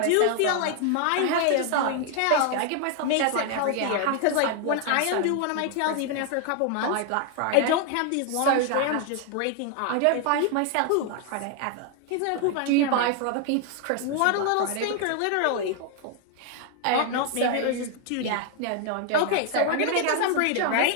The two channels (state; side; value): different; both; correlation 0.00